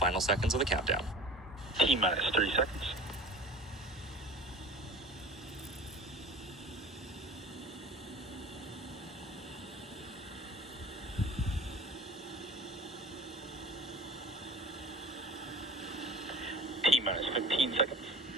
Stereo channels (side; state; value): both; normal; correlation 0.40